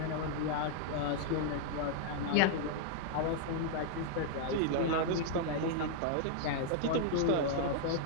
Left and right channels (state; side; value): different; both; correlation -0.01